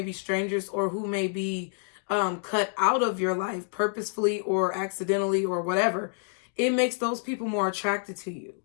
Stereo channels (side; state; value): right; silent; 59 dB below the other